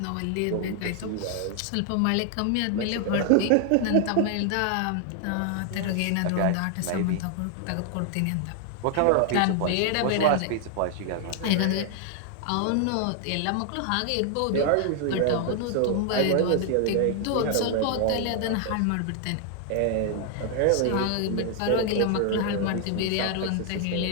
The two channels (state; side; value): different; both; correlation 0.00